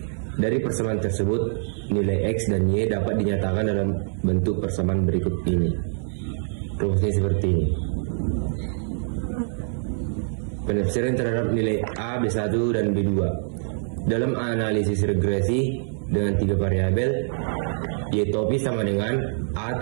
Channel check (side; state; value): left; silent; digital silence